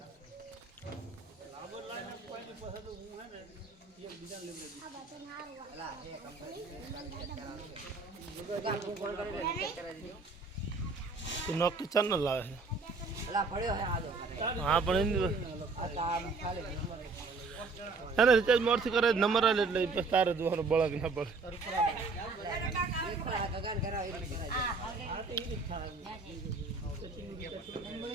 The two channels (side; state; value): left; quieter; 4.1 dB